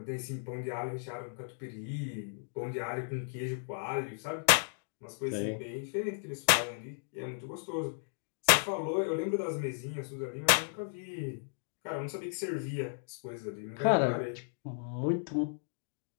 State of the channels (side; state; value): right; silent; digital silence